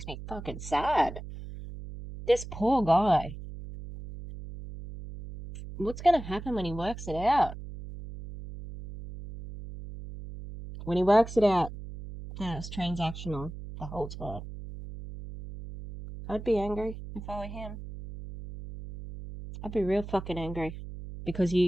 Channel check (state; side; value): noise; right; hum, 11 dB below the sound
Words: me fucking sad. This poor guy. What's gonna happen when he works it out? When he works it out, that it's transactional the whole time. I'd be angry if I were him. I'd be real fucking angry. Because